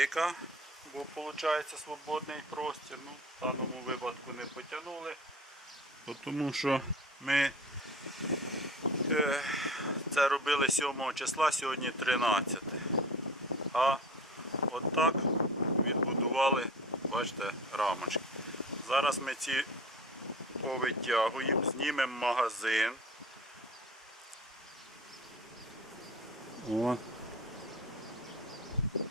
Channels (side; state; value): both; normal; correlation 0.40